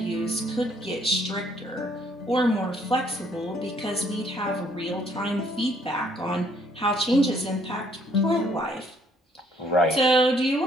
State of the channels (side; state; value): both; normal; correlation 0.65